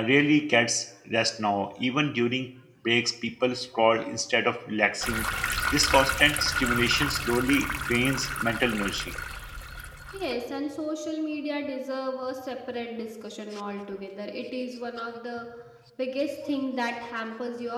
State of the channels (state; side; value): identical; both; correlation 1.00